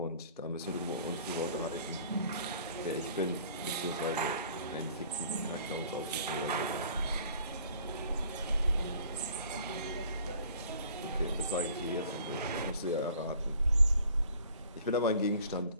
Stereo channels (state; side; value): inverted; both; correlation -0.53